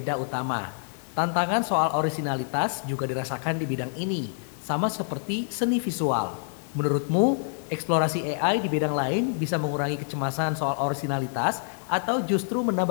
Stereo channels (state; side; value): silent; right; 60 dB below the other